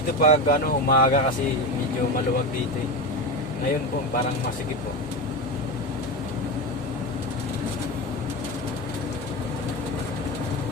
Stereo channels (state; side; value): normal; both; correlation 0.19